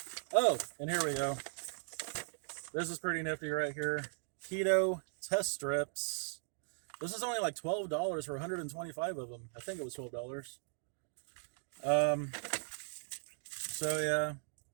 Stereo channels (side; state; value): left; silent; 52 dB below the other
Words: Oh, and here we go. This is pretty nifty right here. Keto test strips. This is only like $12 for 125 of them. I think it was $12. So yeah,